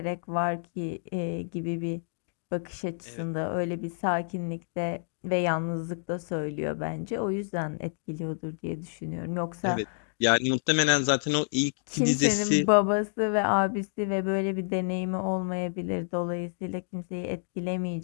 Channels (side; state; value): right; silent; digital silence